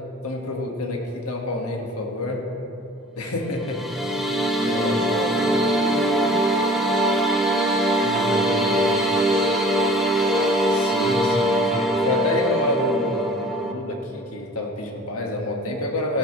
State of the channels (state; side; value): normal; both; correlation 0.45